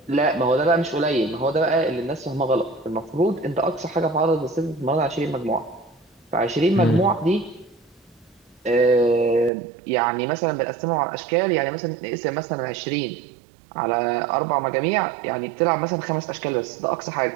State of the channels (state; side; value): drops out; left; at 9.5 s